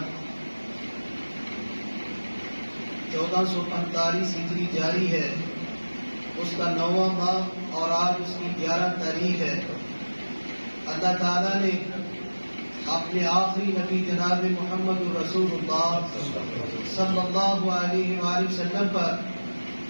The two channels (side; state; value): both; inverted; correlation -1.00